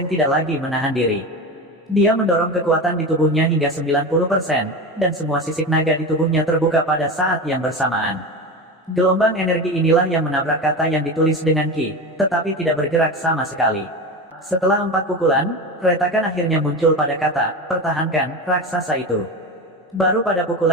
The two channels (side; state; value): both; normal; correlation 0.25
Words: tidak lagi menahan diri. Dia mendorong kekuatan di tubuhnya hingga 90%, dan semua sisik naga di tubuhnya terbuka pada saat yang bersamaan. Gelombang energi inilah yang menabrak kata yang ditulis dengan Qi, tetapi tidak bergerak sama sekali. Setelah 4 pukulan, retakan akhirnya muncul pada kata, pertahankan, raksasa itu. Baru pada